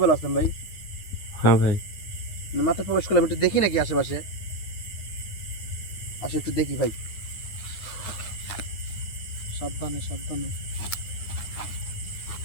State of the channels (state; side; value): late; right; 9.7 ms